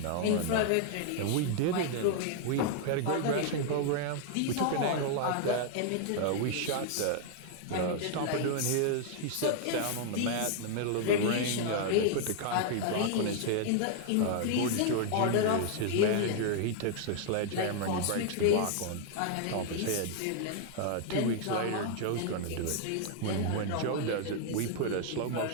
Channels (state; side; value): different; both; correlation 0.00